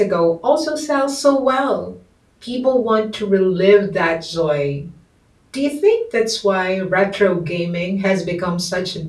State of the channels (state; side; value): identical; both; correlation 1.00